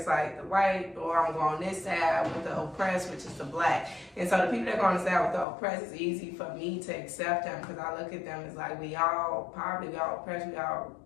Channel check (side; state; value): right; drops out; at 5.5 s